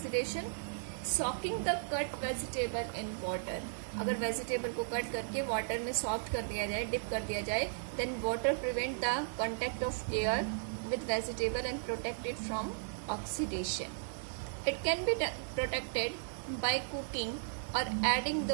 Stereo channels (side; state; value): left; silent; digital silence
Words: Soaking the cut vegetable in water. अगर वेजिटेबल को कट करके वाटर में सॉफ्ट कर दिया जाए, डिप कर दिया जाए, then water prevent the contact of air with vegetable and protect it from oxidation. It can be protected by cooking or adding